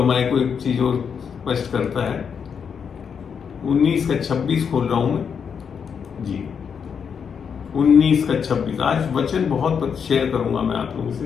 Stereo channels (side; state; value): right; quieter; 6.8 dB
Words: हमारे को एक चीज और स्पष्ट करता है। 19 का 26 खोल रहा हूं मैं जी। 19 का 26। आज वचन बहुत शेयर करूंगा मैं आप लोगों